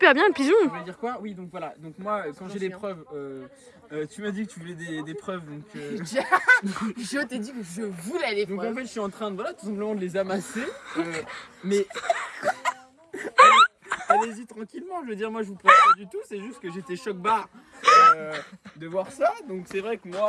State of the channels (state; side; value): identical; both; correlation 1.00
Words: bien le pigeon. On voulait dire quoi? Oui, donc voilà. Donc moi, quand j'ai des preuves, tu m'as dit que tu voulais des preuves, donc. Je t'ai dit que je voulais les Donc preuves. en fait, je suis en train de, tout simplement de les amasser. Mais allez-y tranquillement. Je veux dire, moi, je vous presse pas du tout. C'est juste que j'étais choc-barre de voir ça. Donc c'est vrai que